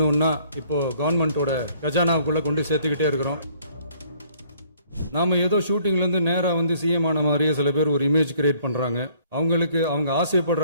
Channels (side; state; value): both; inverted; correlation -0.61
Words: இப்போ கவர்மெண்டோட கஜானாவுக்குள்ள கொண்டு சேர்த்துக்கிட்டே இருக்கிறோம். நாம ஏதோ ஷூட்டிங்ல இருந்து நேரா வந்து சிஎம் ஆன மாதிரியே சில பேர் ஒரு இமேஜ் கிரியேட் பண்றாங்க. அவங்களுக்கு அவங்க